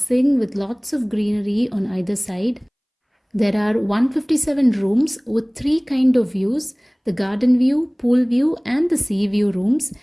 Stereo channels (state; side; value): identical; both; correlation 1.00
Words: with lots of greenery on either side. There are 157 rooms with three kinds of views: the garden view, pool view and the sea view rooms,